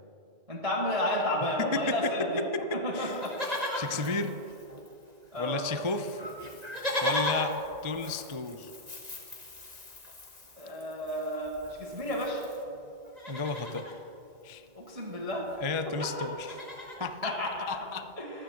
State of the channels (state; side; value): late; left; 1.9 ms